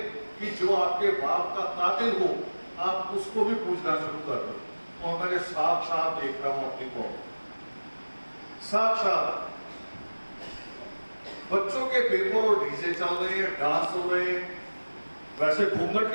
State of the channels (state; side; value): inverted; both; correlation -1.00